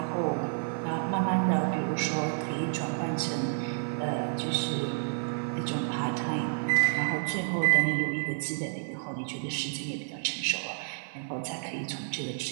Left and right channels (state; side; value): silent; left; digital silence